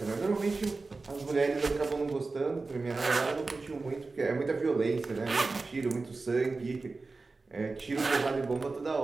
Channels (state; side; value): quieter; left; 3.8 dB